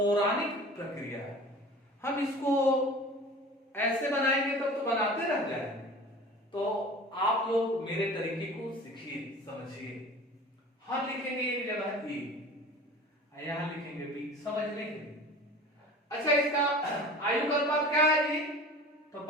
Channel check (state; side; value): normal; both; correlation 0.40